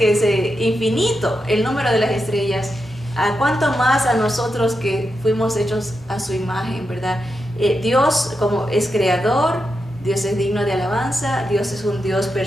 es infinito el número de las estrellas. ¿A cuánto más a nosotros que fuimos hechos a su imagen, verdad? Dios como es creador, Dios es digno de alabanza, Dios es un Dios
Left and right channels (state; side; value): normal; both; correlation 0.87